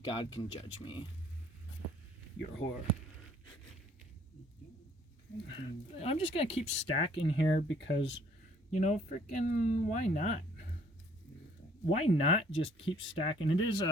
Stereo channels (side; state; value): both; normal; correlation 0.60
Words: can judge me. You're a whore. I'm just going to keep stacking here because, you know, freaking why not? Why not just keep stacking? It is